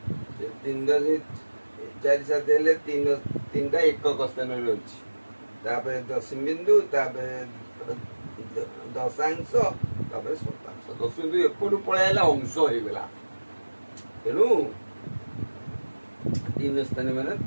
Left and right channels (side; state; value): both; inverted; correlation -1.00